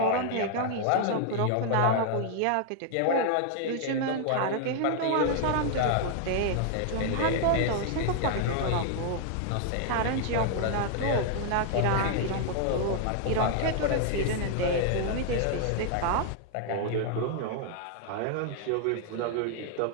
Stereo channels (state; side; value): different; both; correlation 0.00